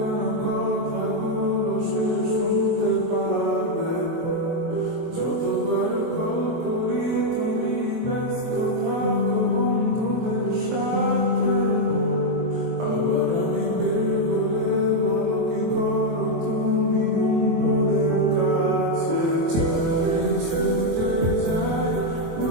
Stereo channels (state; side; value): late; left; 23 ms